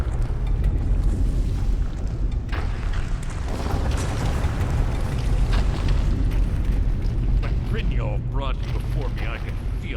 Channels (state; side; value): identical; both; correlation 1.00